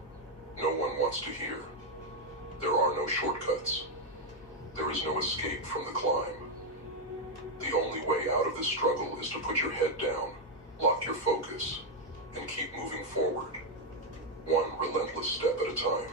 no one wants to hear. There are no shortcuts. There is no escape from the climb. The only way out of this struggle is to put your head down, lock your focus, and keep moving forward, one relentless step at a time.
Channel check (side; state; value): both; normal; correlation 0.02